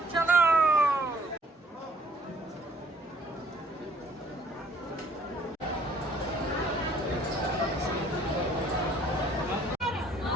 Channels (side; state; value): both; normal; correlation 0.60